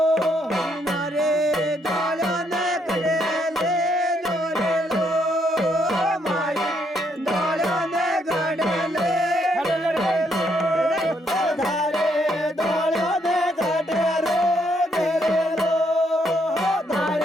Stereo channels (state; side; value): normal; both; correlation 0.73